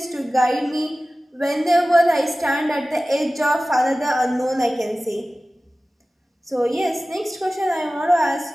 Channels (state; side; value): normal; both; correlation 0.96